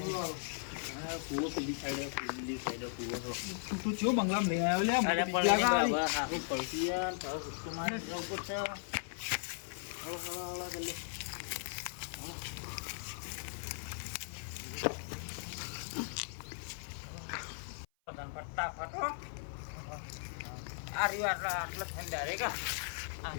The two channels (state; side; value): silent; right; 53 dB below the other